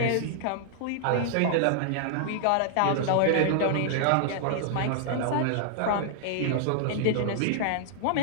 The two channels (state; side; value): different; both; correlation -0.01